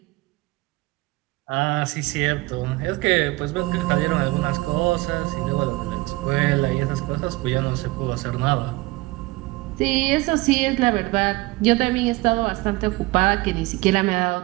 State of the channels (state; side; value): quieter; left; 22.0 dB